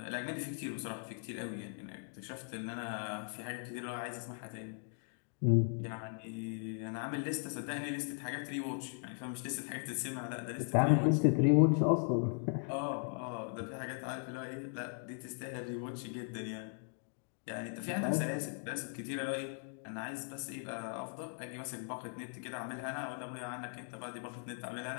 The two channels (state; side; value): silent; right; 52 dB below the other